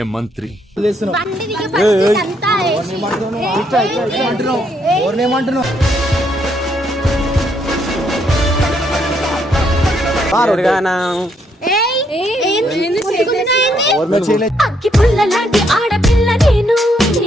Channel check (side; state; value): both; normal; correlation 0.73